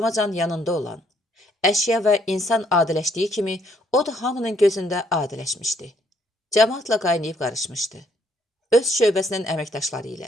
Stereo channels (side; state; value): both; normal; correlation 0.68